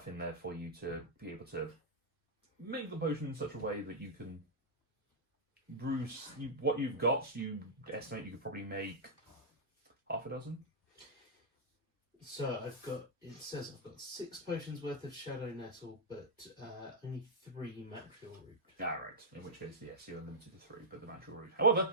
in there for you to be able to make the potion in such a way that you can brew what you've got. You estimate you could probably make half a dozen. So it says I've got 6 potions worth of shadow nettle, but only 3 material root. Ah, right. In which case, yes, you're limited to 3, but the natural root.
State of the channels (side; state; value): both; normal; correlation -0.07